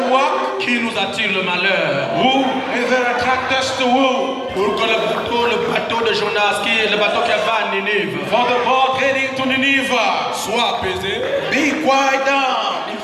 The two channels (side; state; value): both; identical; correlation 1.00